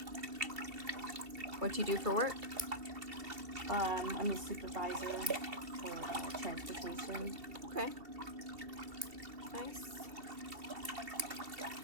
What do you do for work? I'm a supervisor for transportation. Okay. Nice.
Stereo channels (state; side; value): late; left; 2.7 ms